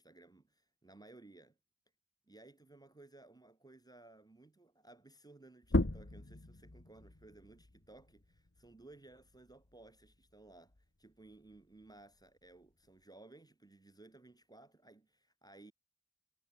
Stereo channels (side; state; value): both; normal; correlation 0.63